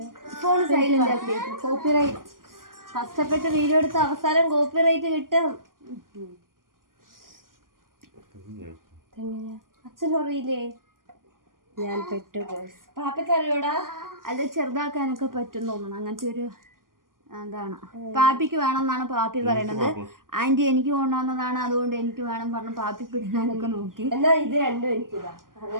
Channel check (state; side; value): late; left; 0.91 ms